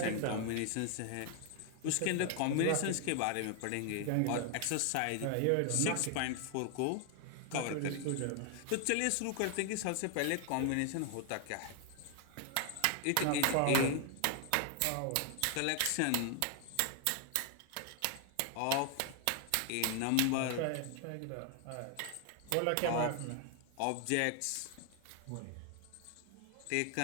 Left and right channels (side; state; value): both; different; correlation 0.00